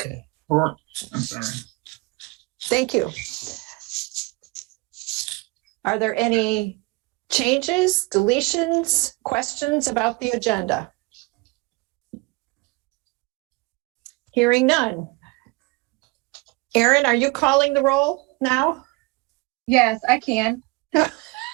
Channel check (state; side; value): quieter; left; 26.0 dB